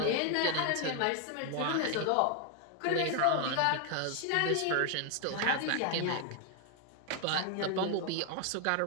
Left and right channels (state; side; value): different; both; correlation 0.00